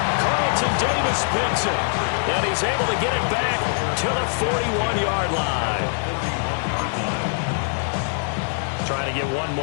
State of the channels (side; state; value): right; silent; 63 dB below the other